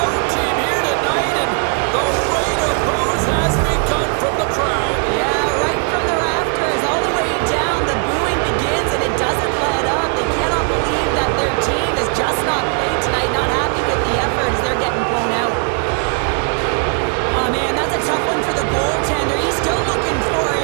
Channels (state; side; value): quieter; left; 39.3 dB